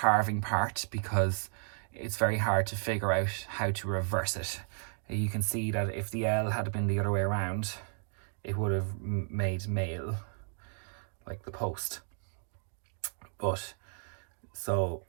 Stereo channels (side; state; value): left; silent; 56 dB below the other